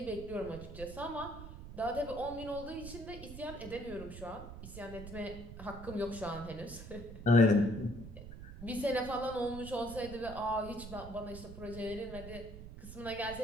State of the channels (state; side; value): noise; right; rumble, 11 dB below the sound